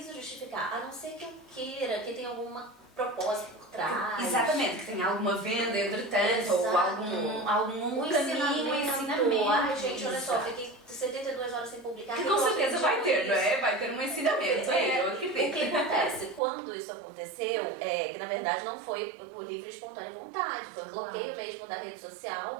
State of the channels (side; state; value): left; drops out; at 16.4 s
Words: justificar, a não ser que eu queira, que tenha alguma propósito por trás. Exatamente, que tenha alguma venda entretanto, ou algum ensinamento. Ai, gente, olha só, fiquei 72 horas sem publicar. Que com certeza vai ter, não é? Vai ter um ensinamento. Eu acredito. O que acontece? Quando isso aconteceu, que na verdade não foi por livre e espontânea vontade, foi um bloqueio mesmo da rede